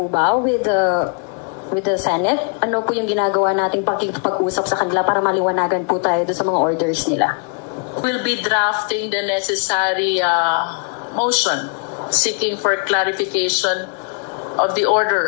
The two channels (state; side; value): quieter; right; 40.0 dB